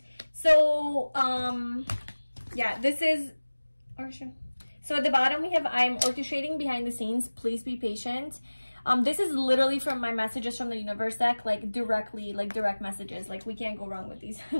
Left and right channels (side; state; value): both; inverted; correlation -1.00